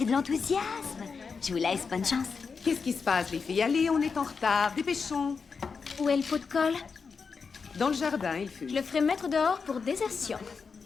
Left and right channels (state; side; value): quieter; right; 5.3 dB